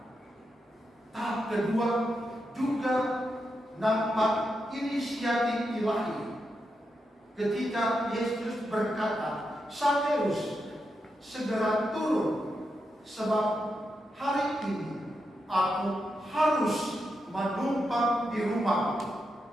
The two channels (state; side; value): normal; both; correlation 0.85